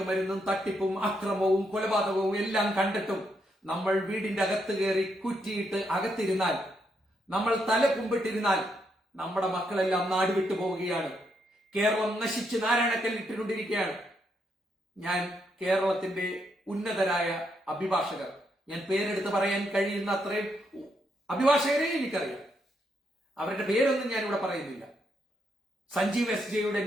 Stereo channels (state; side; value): normal; both; correlation 0.78